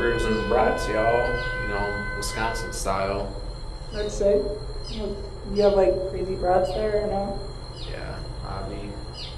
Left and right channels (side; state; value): both; identical; correlation 1.00